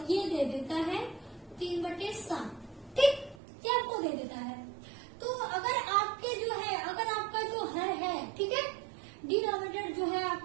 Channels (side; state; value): left; drops out; at 3.4 s